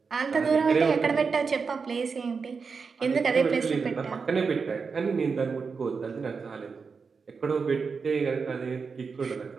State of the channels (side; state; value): left; quieter; 5.2 dB